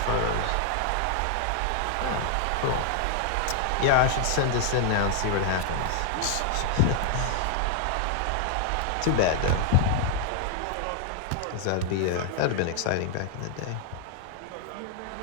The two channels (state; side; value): different; both; correlation 0.00